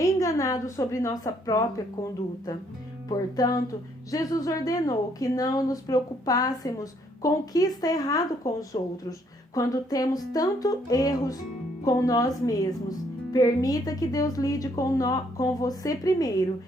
sobre nossa própria conduta. Portanto, Jesus ordenou que não nos preocupássemos com o que está errado com os outros, quando temos tantos erros com nós mesmos. Permita que Deus lide com você primeiro,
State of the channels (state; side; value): normal; both; correlation 0.68